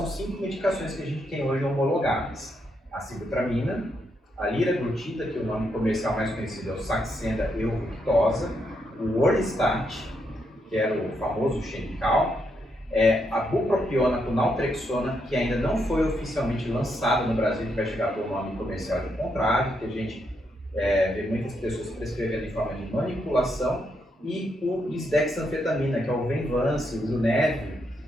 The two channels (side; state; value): both; normal; correlation 0.79